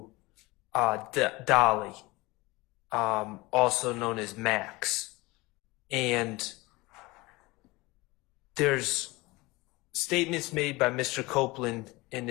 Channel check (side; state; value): right; quieter; 22.3 dB